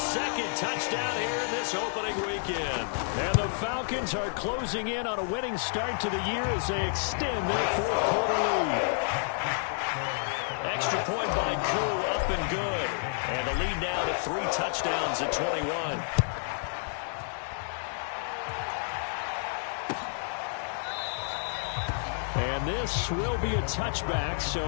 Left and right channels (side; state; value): right; silent; digital silence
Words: touchdown here in this opening weekend. And the Falcons are closing in on a winning start to the year as they extend their fourth quarter lead. Extra point by Koo, up and good. And the lead now to 3 touchdowns at 21. And this will be a touchback,